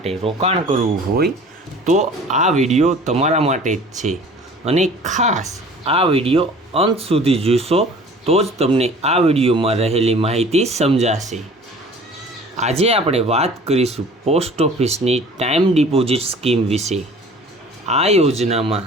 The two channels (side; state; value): both; normal; correlation 0.46